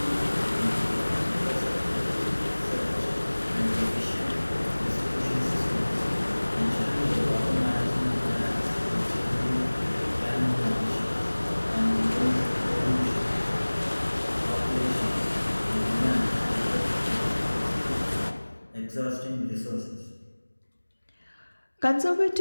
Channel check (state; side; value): inverted; both; correlation -1.00